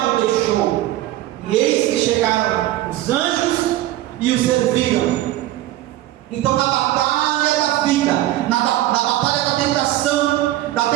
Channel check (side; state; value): left; quieter; 14.9 dB